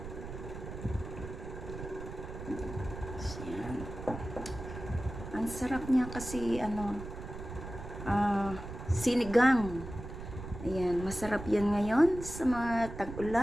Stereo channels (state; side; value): noise; right; rumble, 10 dB below the sound